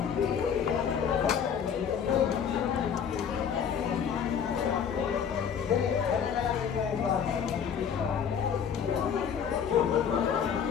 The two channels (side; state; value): right; quieter; 7.6 dB